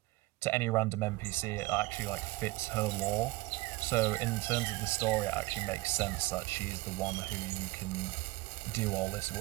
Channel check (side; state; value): left; quieter; 21.2 dB